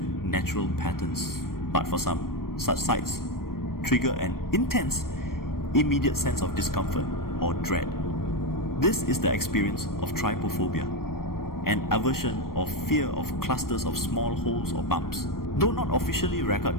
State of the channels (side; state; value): right; late; 0.93 ms